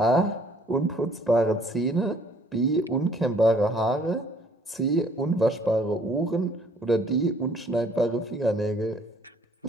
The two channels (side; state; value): both; normal; correlation 0.60